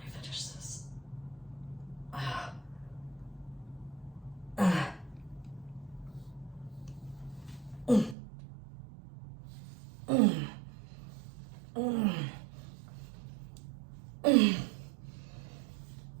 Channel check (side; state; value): left; drops out; at 8.2 s